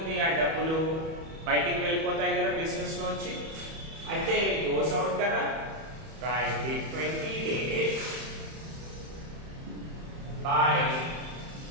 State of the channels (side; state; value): left; late; 31 ms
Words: ఆ డబ్బులు బయటికి వెళ్ళిపోతాయి కదా బిజినెస్ లోంచి. అయితే గోస్ అవుట్ కదా. రాయండి 20 days బై.